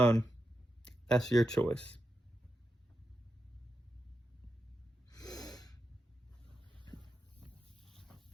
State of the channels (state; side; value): normal; both; correlation 0.87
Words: that's your choice.